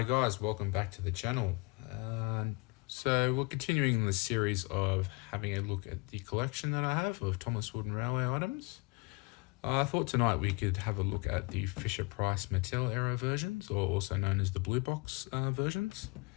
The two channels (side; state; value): right; quieter; 27.7 dB